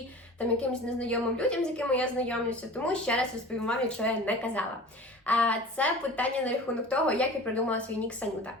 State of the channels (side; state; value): both; normal; correlation 0.39